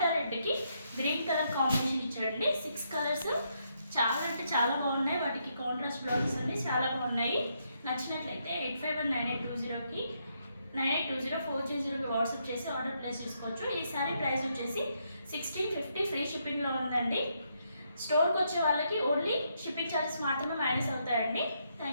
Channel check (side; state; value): both; inverted; correlation -0.77